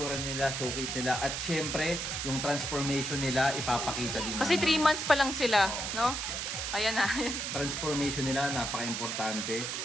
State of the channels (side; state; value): right; noise; hiss, 3 dB below the sound